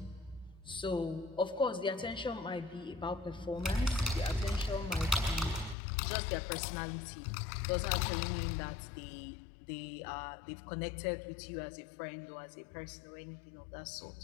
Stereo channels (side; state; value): right; drops out; at 5.8 s